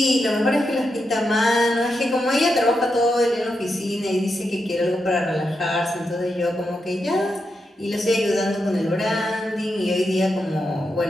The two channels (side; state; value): both; normal; correlation 0.85